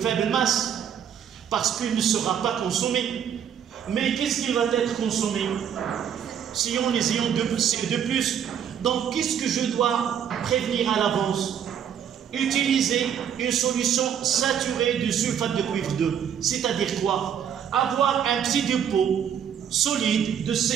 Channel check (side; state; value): left; quieter; 8.6 dB